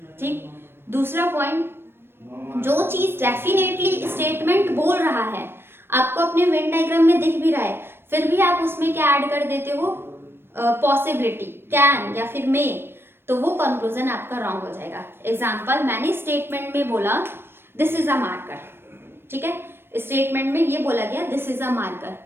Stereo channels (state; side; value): late; left; 0.11 ms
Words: ठीक, दूसरा पॉइंट, जो चीज डेफिनेटली स्टेटमेंट बोल रहा है, आपको अपने वेन डायग्राम में दिख भी रहा है, फिर भी आप उसमें क्या ऐड कर देते हो, पॉसिबिलिटी, कैन या फिर मे, तो वो कंक्लूजन आपका रॉन्ग हो जाएगा। एग्जाम्पल, मैंने स्टेटमेंट में बोला दिस इज अ मार्कर, ठीक है, स्टेटमेंट में ये बोला गया this is a marker,